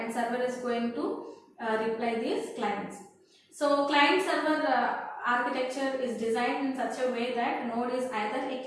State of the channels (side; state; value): both; identical; correlation 1.00